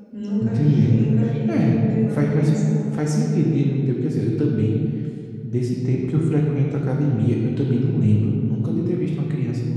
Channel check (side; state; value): both; identical; correlation 1.00